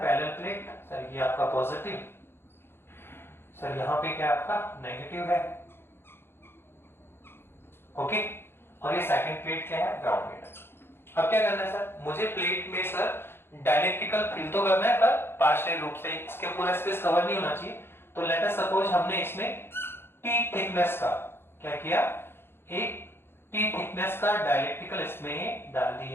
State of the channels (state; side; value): late; right; 0.11 ms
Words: पैरेलल प्लेट सर, ये आपका पॉजिटिव सर, यहां पे क्या आपका नेगेटिव है। ओके, और ये सेकंड प्लेट क्या है, ग्राउंडेड। अब क्या करना है सर, मुझे प्लेट में सर डायलेक्ट्रिकल फिल तो करना है पर पार्शियल रूप से, इसके पूरा स्पेस कवर नहीं होना चाहिए। तो लेट अस सपोज हमने इसमें टी थिकनेस का क्या किया, एक टी थिकनेस का डायलेक्ट्रिकल इसमें डाल